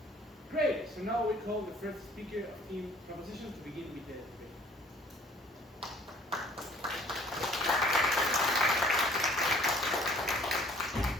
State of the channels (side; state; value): both; normal; correlation 0.55